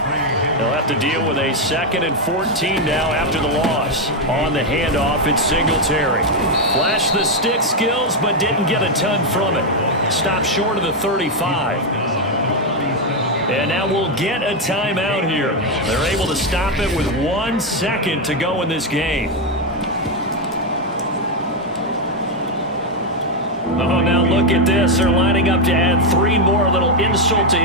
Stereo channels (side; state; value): both; normal; correlation 0.04